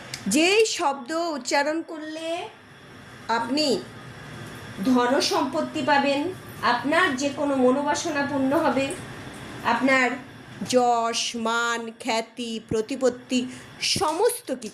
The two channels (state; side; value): identical; both; correlation 1.00